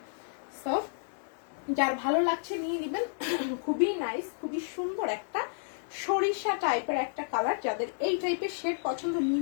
সো যার ভালো লাগছে নিয়ে নিবেন। খুবই নাইস, খুবই সুন্দর একটা সরিষা টাইপের একটা কালার, যাদের এই টাইপের শেড পছন্দ নিয়ে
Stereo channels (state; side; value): silent; right; 57 dB below the other